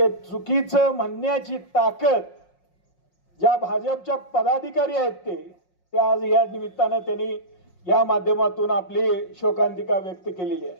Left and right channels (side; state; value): right; late; 5.5 ms